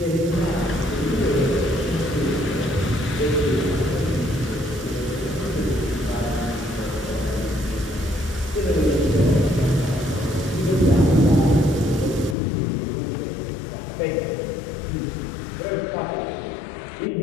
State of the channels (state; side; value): drops out; right; at 12.4 s